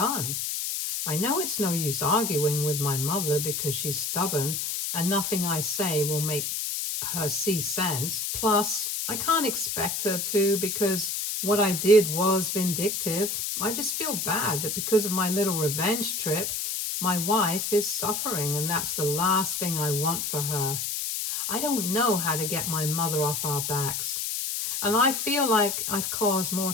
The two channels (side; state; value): left; noise; hiss, 2 dB below the sound